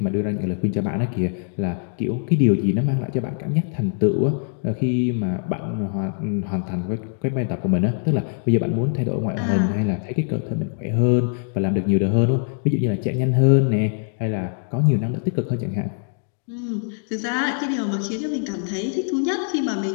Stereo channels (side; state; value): right; silent; digital silence